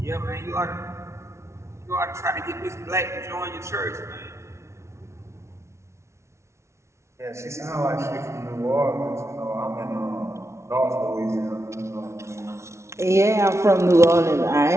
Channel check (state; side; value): late; left; 0.13 ms